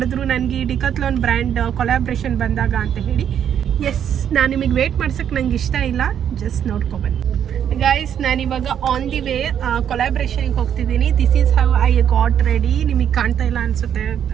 ನನಗೆ ಈ ಡಿಕಾಥ್ಲಾನ್ ಬ್ರ್ಯಾಂಡ್ ಕೊಲಾಬ್ರೇಷನ್ ಬಂದಾಗ ಅಂತ ಹೇಳಿ. ಎಸ್, ನಾನು ನಿಮಗೆ ವೇಟ್ ಮಾಡ್ಸೋಕ್ಕೆ ನಂಗೆ ಇಷ್ಟ ಇಲ್ಲ, ಜಸ್ಟ್ ನೋಡ್ಕೊಬನ್ನಿ ಗೈಸ್. ನಾನಿವಾಗ ಆನ್ ದಿ ವೇ ಕೊಲಾಬ್ರೇಷನ್ಗೆ ಹೋಗ್ತಿದ್ದೀನಿ. This is how I got ready. ನಿಮಗೆ ಕಾಣ್ತಾ ಇಲ್ಲ ಅನಿಸುತ್ತೆ,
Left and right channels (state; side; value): quieter; left; 9.1 dB